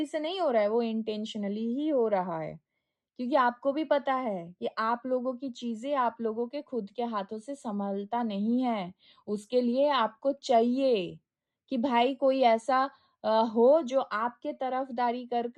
से नहीं हो रहा है, वो इंटेंशनली ही हो रहा है। क्योंकि आपको भी पता है कि आप लोगों की चीज़ें आप लोगों के खुद के हाथों से सँभलता नहीं है। उसके लिए आपको चाहिए कि भाई कोई ऐसा हो जो आपके तरफदारी कर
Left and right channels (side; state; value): both; identical; correlation 1.00